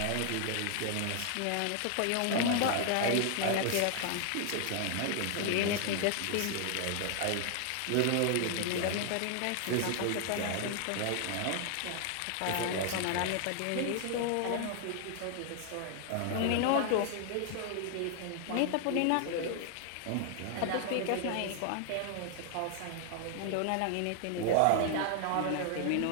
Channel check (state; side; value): different; both; correlation 0.00